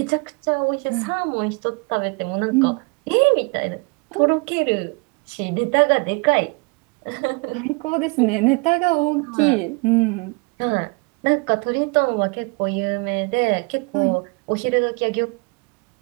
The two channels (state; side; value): quieter; left; 30.6 dB